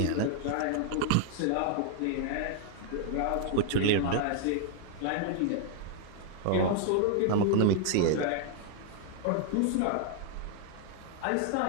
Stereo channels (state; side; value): different; both; correlation 0.00